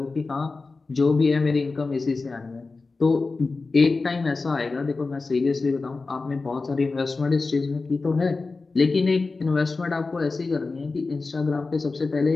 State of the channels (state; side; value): quieter; right; 3.9 dB